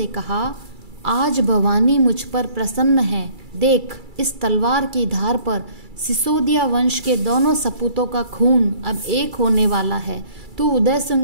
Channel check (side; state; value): left; late; 2.3 ms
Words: कहा, आज भवानी मुझ पर प्रसन्न है। देख, इस तलवार की धार पर सिसोदिया वंश के दोनों सपूतों का खून अब एक होने वाला है। तू उदय